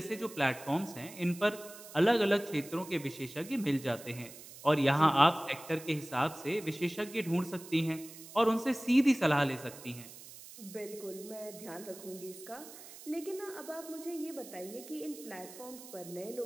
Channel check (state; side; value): noise; right; hiss, 16 dB below the sound